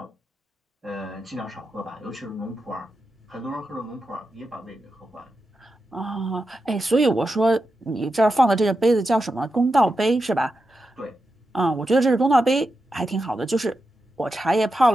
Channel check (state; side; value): normal; both; correlation 0.89